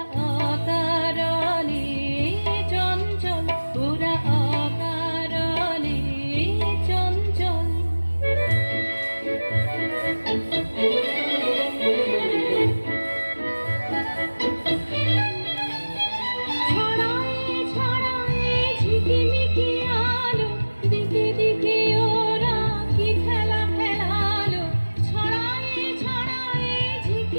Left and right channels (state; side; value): inverted; both; correlation -1.00